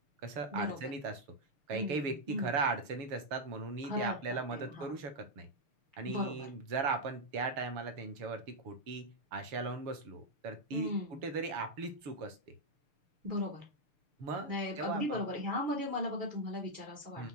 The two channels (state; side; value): late; left; 6.7 ms